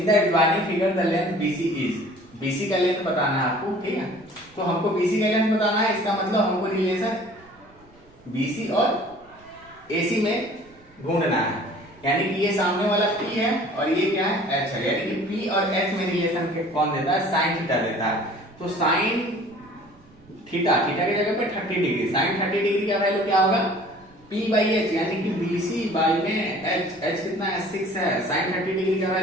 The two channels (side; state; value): right; noise; rumble, 28 dB below the sound